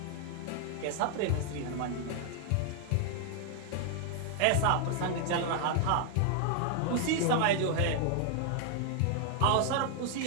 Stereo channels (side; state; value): both; different; correlation 0.00